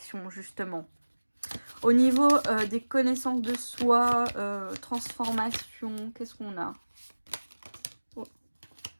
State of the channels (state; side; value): inverted; both; correlation -1.00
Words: justement. Au niveau des connaissances de soi, transformation, qu'est-ce qu'on a?